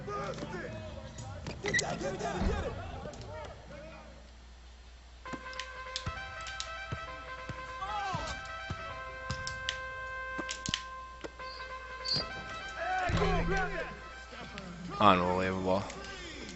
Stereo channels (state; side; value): identical; both; correlation 1.00